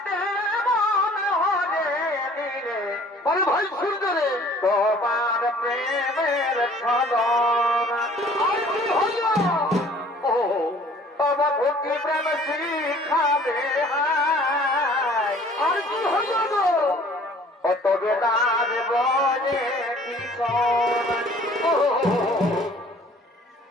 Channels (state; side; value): normal; both; correlation 0.52